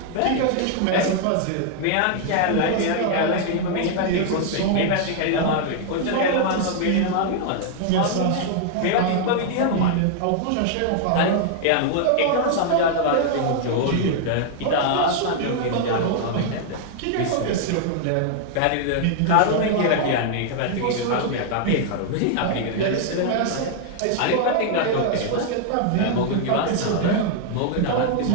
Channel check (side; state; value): both; different; correlation -0.01